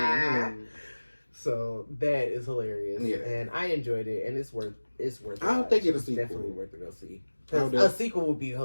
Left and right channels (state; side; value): inverted; both; correlation -1.00